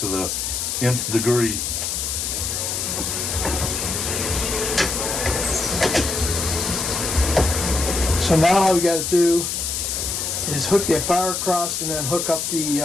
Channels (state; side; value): noise; left; hiss, 2 dB below the sound